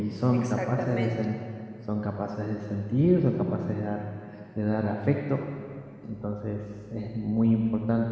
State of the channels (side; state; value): both; identical; correlation 1.00